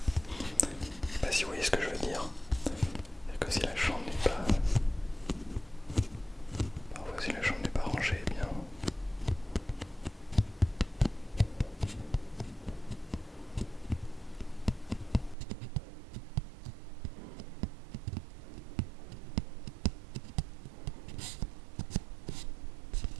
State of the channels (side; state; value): left; drops out; at 15.4 s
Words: Je sais pas si vous voyez ce que je veux dire. C'est-à-dire que si la chambre n'est pas... Parfois si la chambre n'est pas rangée, eh bien...